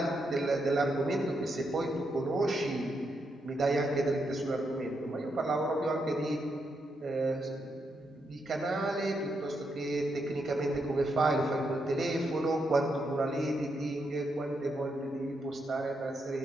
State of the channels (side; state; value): both; normal; correlation 0.81